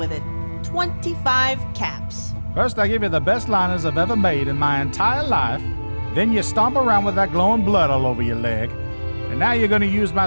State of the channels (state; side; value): inverted; both; correlation -1.00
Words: it. 25 caps. First I give you the best liners I've ever made in my entire life, then you stomp around with that glowing blood all over your leg, and now you're gonna use